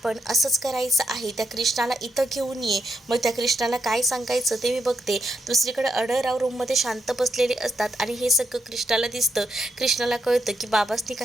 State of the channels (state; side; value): normal; both; correlation 0.81